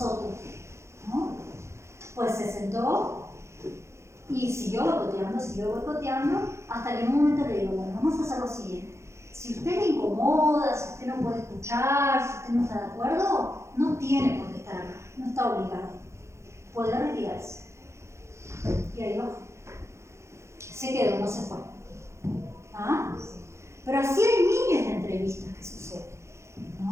¿no? Pues se sentó y siguió boicoteando, hasta que en un momento le digo, bueno, vamos a hacer lo siguiente. Si usted le incomoda, si usted no puede escuchar, si usted no está de acuerdo, no tiene por qué estar acá, no está obligado. Puede retirarse. Y ahí bajó. Se quedó, no se fue. ¿Ah? Pero así hay miles de entrevistas que suceden,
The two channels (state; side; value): late; left; 0.14 ms